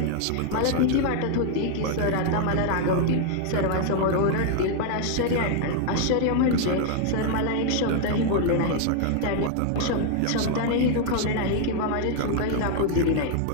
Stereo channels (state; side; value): different; both; correlation 0.00